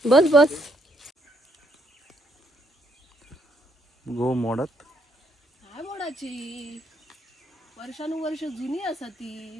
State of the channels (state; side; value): normal; both; correlation 0.73